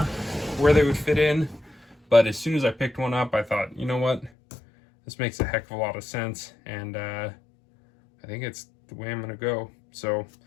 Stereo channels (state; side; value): drops out; right; at 4.3 s